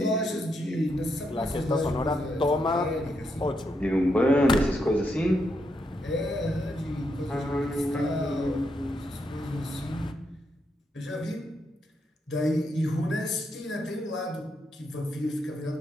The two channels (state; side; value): normal; both; correlation 0.80